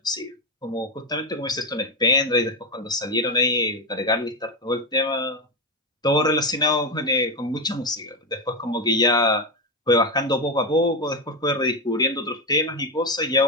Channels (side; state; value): both; normal; correlation 0.12